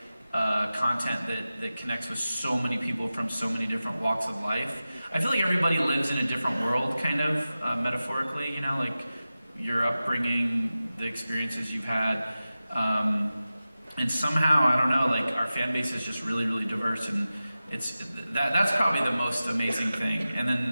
content that connects with so many people from so many different walks of life? I feel like everybody lives in a different world, kind of, metaphorically, you know, like your upbringing, the experiences you've had. and somehow, I don't know, like our fan base is just really, really diverse, and that's probably the most amazing thing.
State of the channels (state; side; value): inverted; both; correlation -0.95